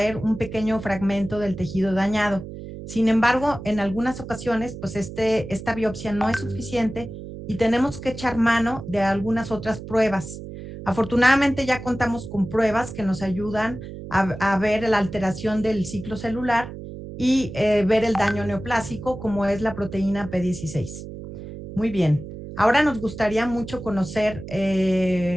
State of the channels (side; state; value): right; noise; hum, 11 dB below the sound